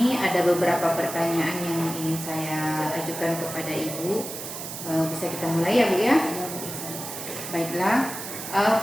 ada beberapa pertanyaan yang ingin saya ajukan kepada Ibu. Bisa kita mulai ya Bu ya? Baiklah.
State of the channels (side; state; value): right; noise; hiss, 8 dB below the sound